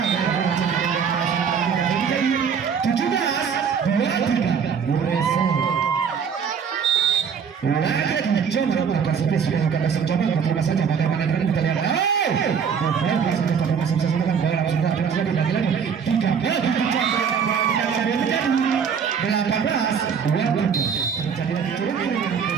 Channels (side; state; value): left; quieter; 6.8 dB